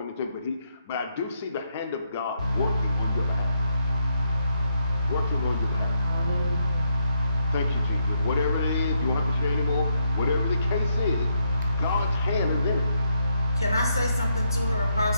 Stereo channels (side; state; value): both; inverted; correlation -0.79